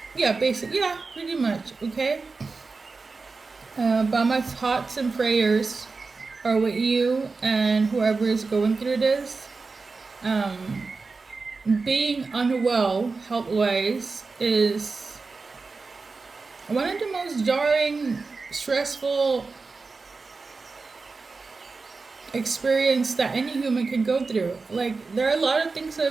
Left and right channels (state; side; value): quieter; left; 4.2 dB